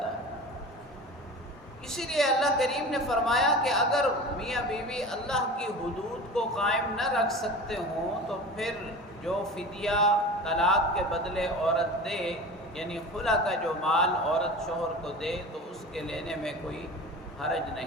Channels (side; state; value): both; normal; correlation 0.34